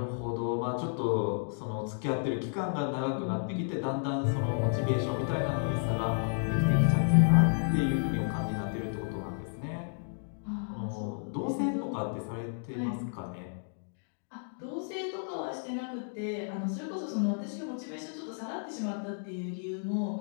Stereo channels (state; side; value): silent; right; digital silence